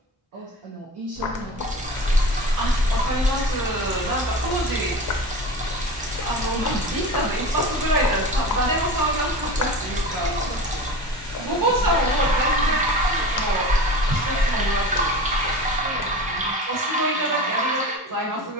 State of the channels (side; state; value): both; normal; correlation 0.32